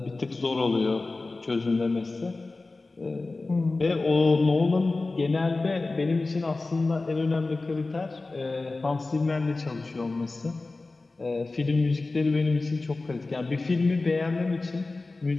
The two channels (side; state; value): right; quieter; 3.4 dB